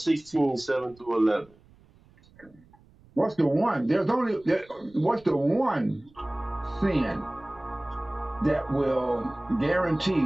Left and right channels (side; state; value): right; noise; rumble, 28 dB below the sound